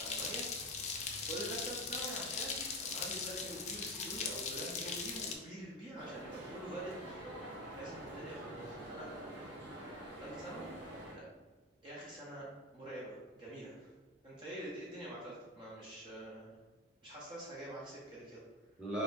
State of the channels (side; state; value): both; normal; correlation 0.18